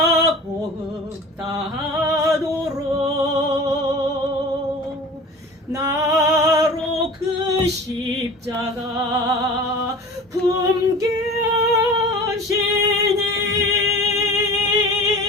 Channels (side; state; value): both; normal; correlation 0.39